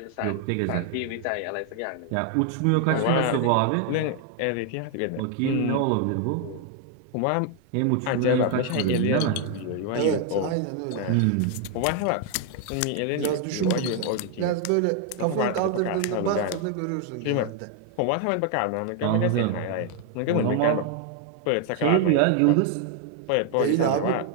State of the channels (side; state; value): both; different; correlation 0.00